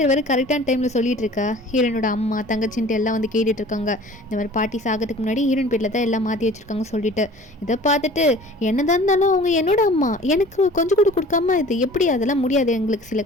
வேறு கரெக்டான டைமில் சொல்லிட்டு இருக்கா. ஹீரோனோட அம்மா தங்கச்சின்ட்டு எல்லாம் வந்து கேட்டுட்டு இருக்காங்க, இந்த மாதிரி பாட்டி சாகிறதுக்கு முன்னாடி ஹீரோயின் பேரில் தான் எல்லாம் மாற்றி வச்சுருக்காங்க சொல்லிட்டு. இதை பார்த்துட்டு என்னதான் இருந்தாலும் அவங்க என்னோட அம்மா, எனக்கு கொஞ்சம் கூட கொடுக்காம இது எப்படி, அதெல்லாம் முடியாது, எங்களுக்கு சில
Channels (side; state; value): both; normal; correlation 0.46